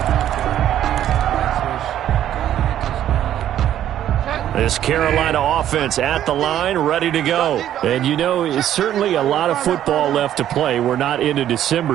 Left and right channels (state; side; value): quieter; left; 11.4 dB